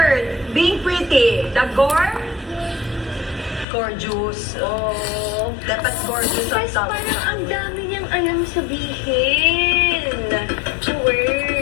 Being pretty. Dagor? Gorgeous. Oh. Dapat gorgeous ang Mas tawag. parang ang dami niyang alam sabihin.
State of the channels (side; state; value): right; drops out; at 3.7 s